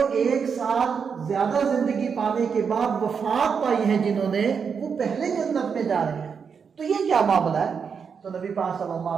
1 سال زیادہ زندگی پانے کے بعد وفات پائی ہیں جنہوں نے، وہ پہلے جنت میں جا رہے ہیں، تو یہ کیا معاملہ ہے؟ تو نبی پاک صلی اللہ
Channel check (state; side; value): quieter; left; 6.3 dB